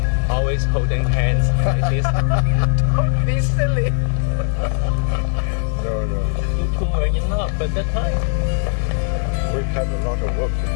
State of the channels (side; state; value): right; silent; digital silence